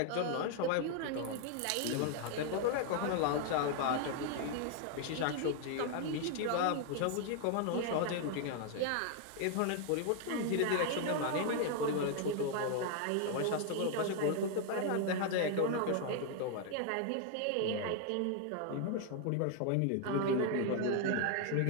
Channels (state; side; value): different; both; correlation 0.00